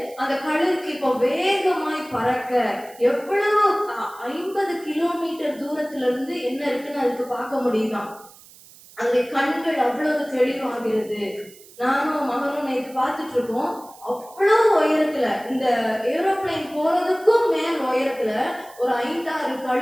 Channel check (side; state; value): right; noise; hiss, 22 dB below the sound